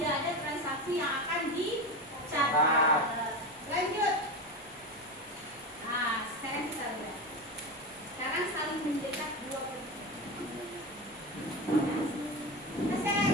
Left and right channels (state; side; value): normal; both; correlation 0.21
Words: ada transaksi yang akan dicatat. Lanjut. Nah, sekarang kita lihat. Sekarang saling mendekat dua posisi. Nah, saya